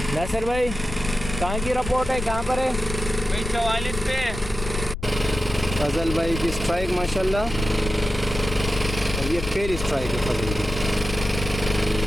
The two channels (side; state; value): left; noise; rumble, 7 dB below the sound